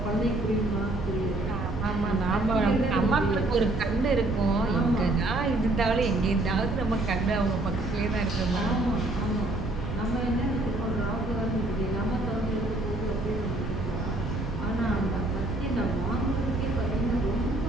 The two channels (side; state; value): right; noise; rumble, 6 dB below the sound